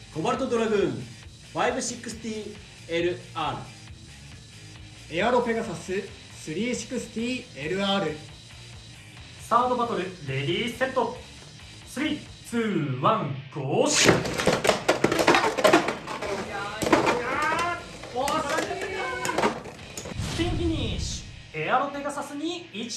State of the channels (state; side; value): identical; both; correlation 1.00